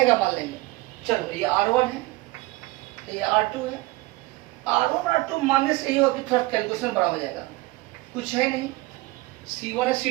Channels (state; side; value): quieter; left; 21.0 dB